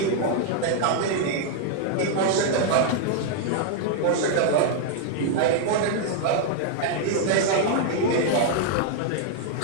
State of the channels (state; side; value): different; both; correlation -0.01